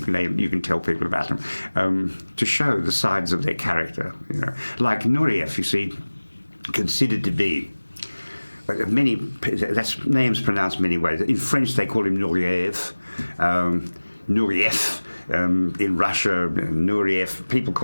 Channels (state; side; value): inverted; both; correlation -1.00